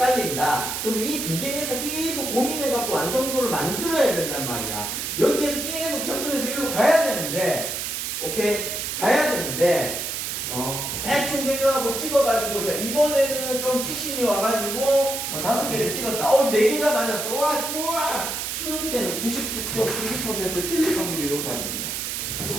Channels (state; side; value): noise; right; hiss, 3 dB below the sound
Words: 그럼 이 2개에서 계속 고민해갖고 완성도를 만들어야 된단 말이야. 여기에서 계속 접근해서 이리로 가야 되는데, 오케이? 가야 되는데, 대충 생각하고 찍어가지고, 자, 이번에는 좀 찍신이 와가지고, 5개를 찍었다. 4개가 맞았어. 우와! 수능 때는 99.99% 틀릴 확률이 높아집니다.